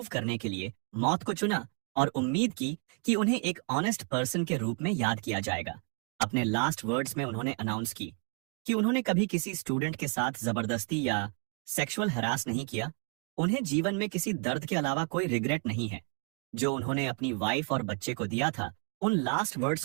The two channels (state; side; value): quieter; left; 35.0 dB